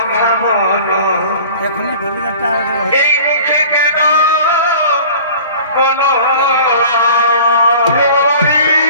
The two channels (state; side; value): inverted; both; correlation -0.43